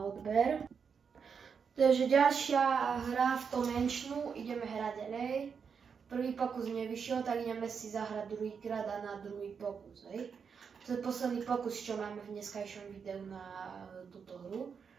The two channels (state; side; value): quieter; left; 6.3 dB